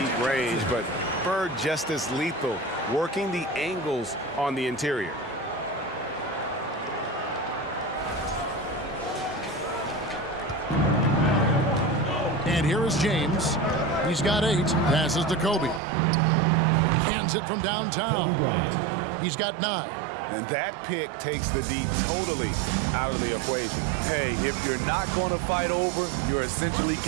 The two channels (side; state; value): left; drops out; at 15.8 s